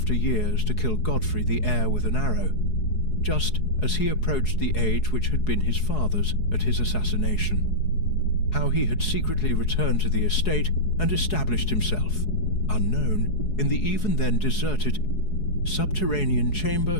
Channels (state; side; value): late; right; 4.7 ms